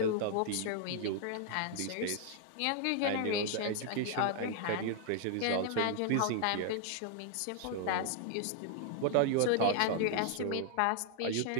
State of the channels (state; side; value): different; both; correlation 0.00